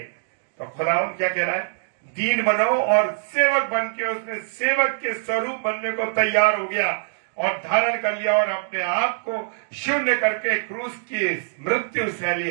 तो खुदावंद क्या कह रहा है? दीन बनो और सेवक बन के उसने सेवक के स्वरूप बनने को तैयार हो गया और धारण कर लिया और अपने आप को शून्य करके क्रूस की मृत्यु सहली।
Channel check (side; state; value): left; silent; digital silence